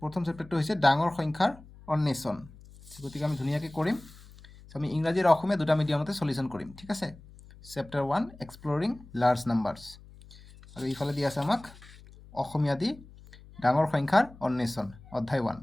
প্ৰথম চেপ্টাৰটো হৈছে ডাঙৰ সংখ্যাৰ অন্বেষণ। গতিকে আমি ধুনীয়াকৈ কৰিম। আমি ইংৰাজী আৰু অসমীয়া দুটা মিডিয়ামতে সলিউশ্যন কৰিম, ঠিক আছে। চেপ্টাৰ 1 এক্সপ্লৰিং লাৰ্জ নাম্বাৰ্ছ, আৰু ইফালে দি আছে আমাক অসমীয়া দি ডাঙৰ সংখ্যাৰ অন্বেষণ অধ্যায় 1।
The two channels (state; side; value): noise; left; hum, 21 dB below the sound